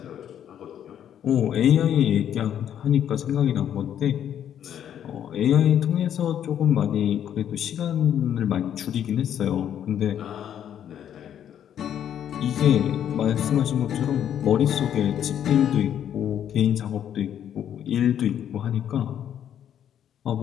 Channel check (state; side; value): quieter; right; 9.8 dB